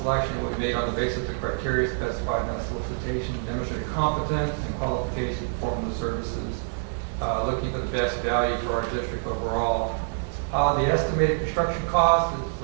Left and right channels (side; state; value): left; silent; digital silence